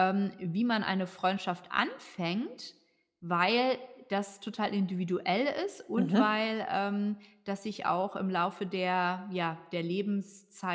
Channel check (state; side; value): identical; both; correlation 1.00